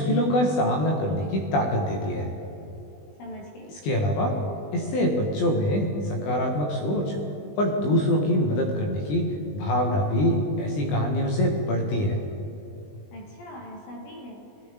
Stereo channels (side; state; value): right; late; 20 ms